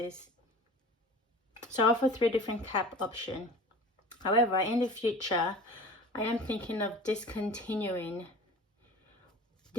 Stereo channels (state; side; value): normal; both; correlation 0.40